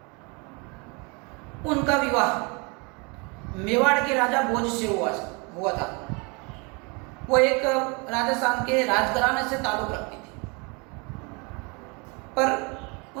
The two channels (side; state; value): left; quieter; 30.7 dB